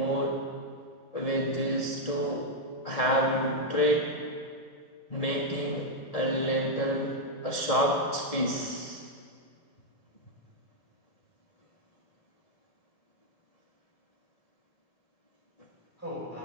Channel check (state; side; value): late; right; 1.7 ms